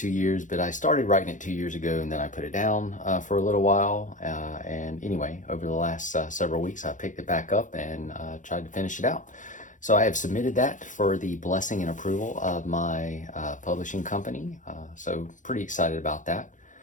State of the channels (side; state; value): right; late; 0.37 ms